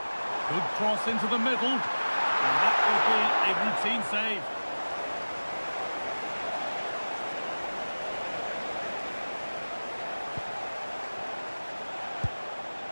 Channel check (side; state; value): both; inverted; correlation -1.00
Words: Good cross into the middle. And that will be a routine save.